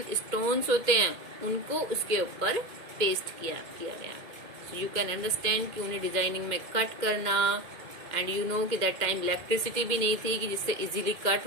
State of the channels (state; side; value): late; left; 2.1 ms